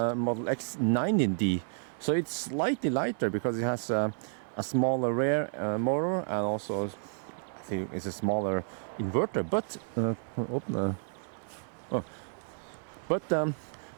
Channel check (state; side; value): silent; left; 57 dB below the other